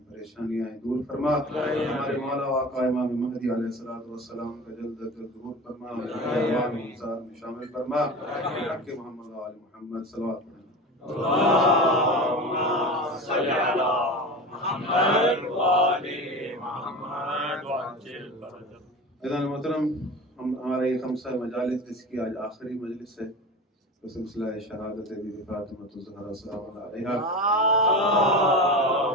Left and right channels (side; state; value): both; normal; correlation 0.30